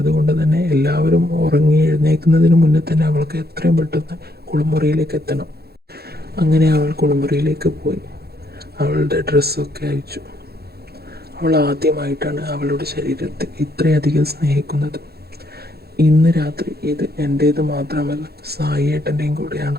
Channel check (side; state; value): left; late; 0.46 ms